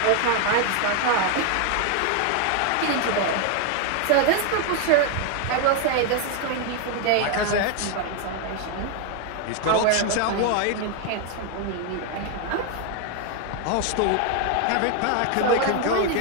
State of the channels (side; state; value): both; different; correlation 0.01